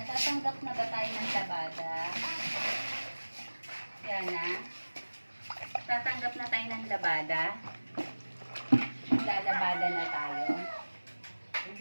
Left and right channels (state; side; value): inverted; both; correlation -1.00